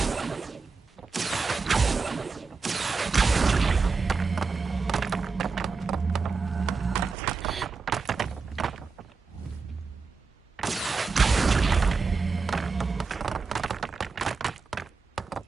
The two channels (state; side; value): quieter; left; 4.6 dB